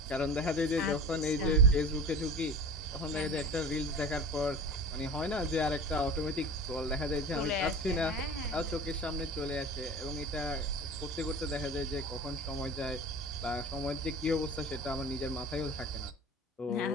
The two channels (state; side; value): normal; both; correlation 0.35